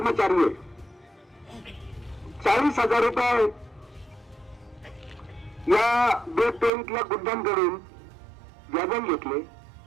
आहे. 40,000 रुपये या बेट टोळीतल्या गुंडांकडून व्याजाने घेतले.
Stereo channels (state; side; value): drops out; left; at 6.7 s